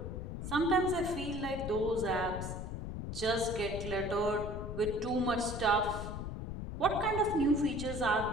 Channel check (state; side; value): noise; left; rumble, 6 dB below the sound